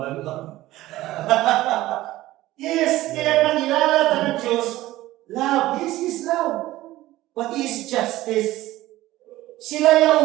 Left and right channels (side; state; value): left; quieter; 16.5 dB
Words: Yes, kaya nangilala ng Diyos, love. Yes, is love. What is justice? Sila